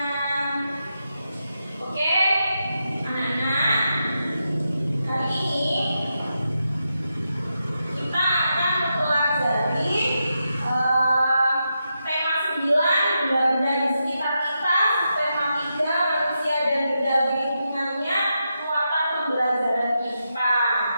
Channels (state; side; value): inverted; both; correlation -0.86